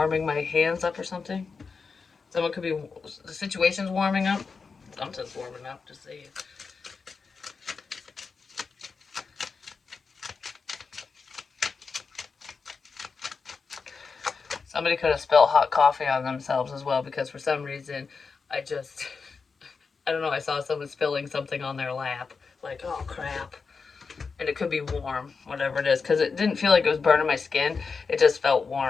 my hands up or something. Someone could be, the situation's warming up. Something's warming up, just saying. Somebody could have spilled hot coffee on themselves as well, because for some reason, I don't know, I saw someone spilling something on their lap. Like, oh crap. And it could be warm, whatever it is, because it didn't feel like it was burning my skin. It just felt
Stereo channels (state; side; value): quieter; right; 5.0 dB